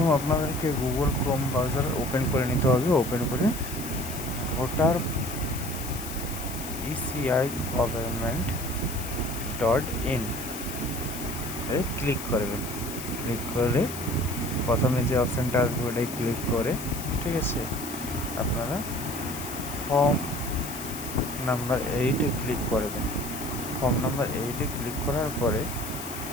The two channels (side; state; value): left; noise; hiss, 10 dB below the sound